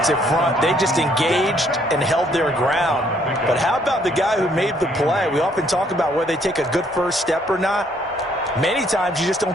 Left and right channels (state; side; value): normal; both; correlation 0.66